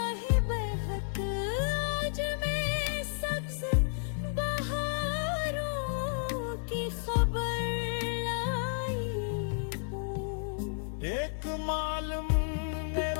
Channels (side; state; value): right; silent; 57 dB below the other